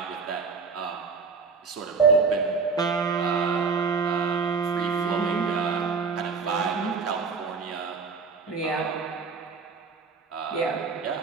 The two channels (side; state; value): left; quieter; 5.0 dB